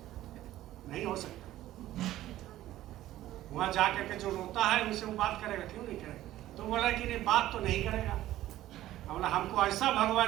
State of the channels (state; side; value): quieter; left; 14.4 dB